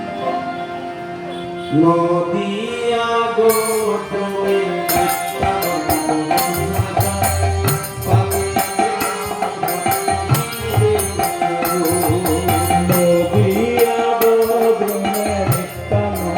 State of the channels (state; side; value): identical; both; correlation 1.00